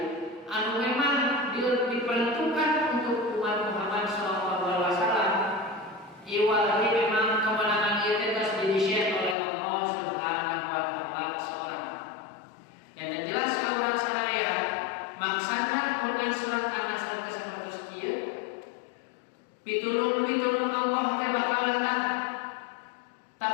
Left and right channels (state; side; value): drops out; right; at 9.3 s